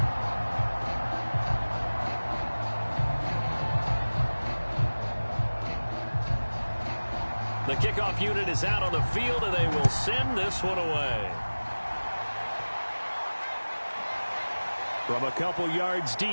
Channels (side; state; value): both; inverted; correlation -1.00